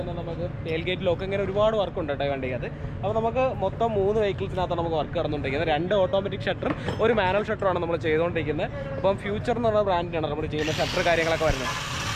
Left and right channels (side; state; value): both; identical; correlation 1.00